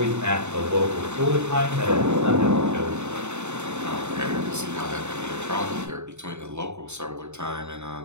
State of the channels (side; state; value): left; late; 0.82 ms